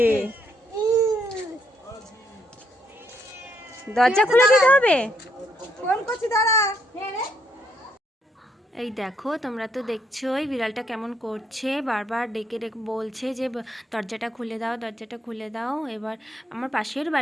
দরজা খুলে দিতে হবে। ফোন করছি, দাঁড়া। এই দেখো, তোমরা তো দেখছোই বিড়ালটা কেমন করছে, বারবার ডেকে ডেকে বলছে যে দরজাটা খুলে দাও, দরজাটা খুলে দাও। এবার আমার পাশের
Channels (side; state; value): both; normal; correlation 0.73